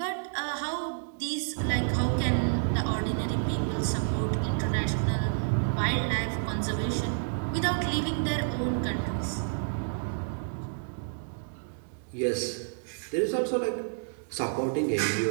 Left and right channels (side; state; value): left; silent; digital silence